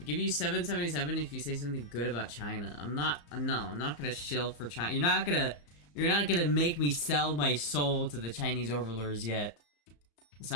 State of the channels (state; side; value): late; right; 34 ms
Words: give you 777 if you say something good about China. I'm not gonna shill for China. You're not gonna make me sell my soul to the Chinese overlords yet. So